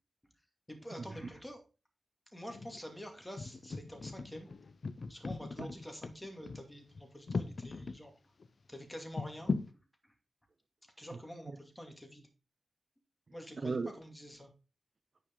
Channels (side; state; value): both; normal; correlation 0.92